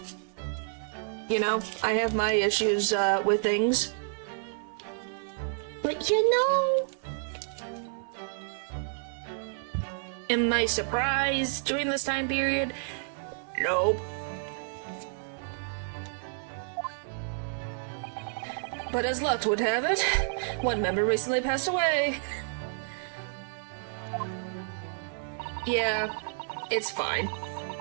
You know, I have my issues with things. But you know... Am I surprised during this time period? Nope. But as luck would have it, one member recently passed away. Yeah, it's fine.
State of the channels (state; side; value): silent; left; 58 dB below the other